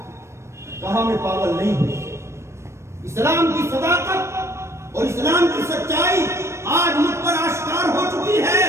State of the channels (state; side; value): late; left; 0.13 ms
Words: کہا میں پاگل نہیں ہوں، اسلام کی صداقت اور اسلام کی سچائی آج مجھ پر آشکار ہو چکی ہے،